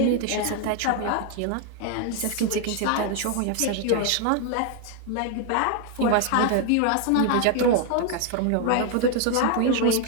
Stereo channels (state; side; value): different; both; correlation 0.00